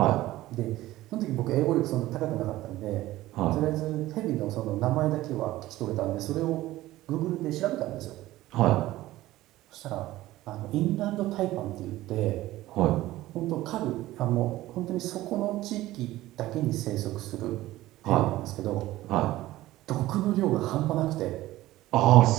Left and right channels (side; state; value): left; quieter; 16.4 dB